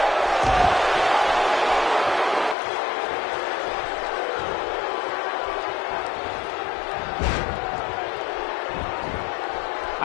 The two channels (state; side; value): drops out; right; at 2.6 s